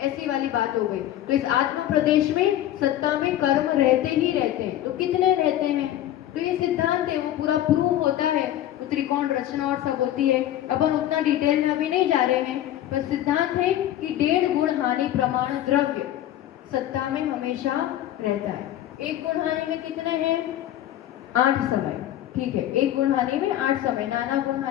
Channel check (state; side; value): quieter; right; 12.6 dB